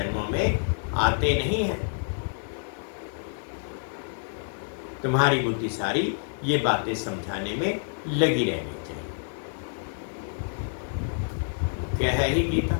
में आते नहीं हैं। तुम्हारी बुद्धि सारी ये बातें समझाने में लगी रहनी चाहिए। क्या है ही गीता,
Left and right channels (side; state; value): right; silent; digital silence